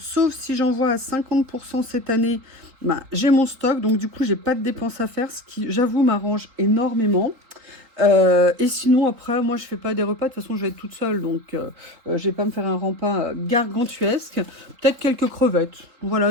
si j'en vois à 50% cette année, ben, j'ai mon stock. Donc, du coup, j'ai pas de dépenses à faire, ce qui, j'avoue, m'arrange énormément. Et sinon, après, moi, je fais pas des repas. De toute façon, je vais être toute seule. Donc, je vais pas me faire un repas gargantuesque. Peut-être quelques crevettes.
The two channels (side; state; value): left; late; 4.0 ms